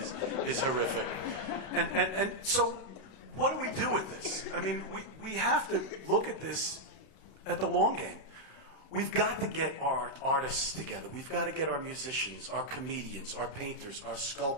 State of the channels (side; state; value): right; late; 32 ms